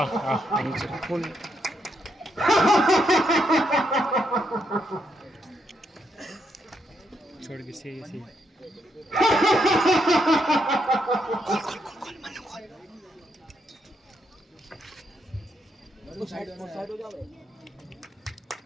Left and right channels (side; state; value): both; normal; correlation 0.78